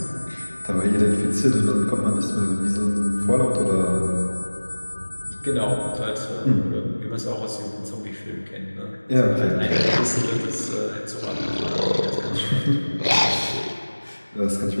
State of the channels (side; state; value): both; inverted; correlation -1.00